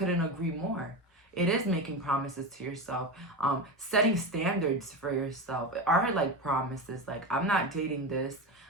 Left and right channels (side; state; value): both; normal; correlation 0.20